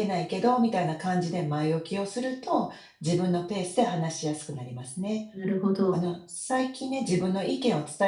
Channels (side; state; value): both; identical; correlation 1.00